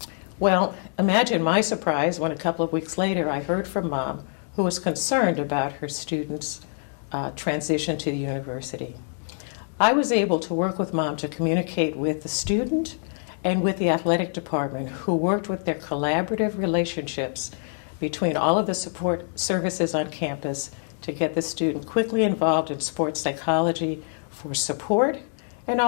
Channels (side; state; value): right; silent; 61 dB below the other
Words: Well, imagine my surprise when a couple of weeks later I heard from Mom, who was concerned about her student's transition to the university. I was able to work with Mom to communicate with the student and with the athletic department, who worked with their collaborative relationships between all of the support services on campus to get the student quickly involved in sports psychology for support and